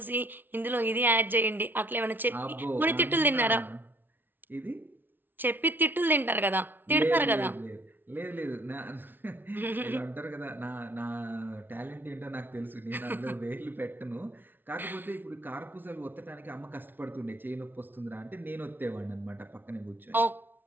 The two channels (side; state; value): left; late; 0.094 ms